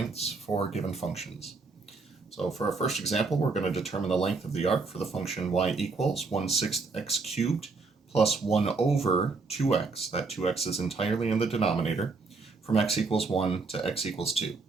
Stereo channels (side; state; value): left; quieter; 4.1 dB